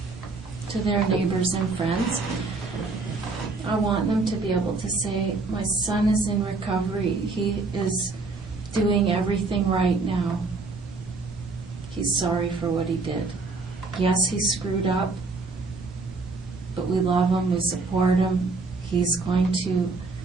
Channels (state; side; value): quieter; left; 3.8 dB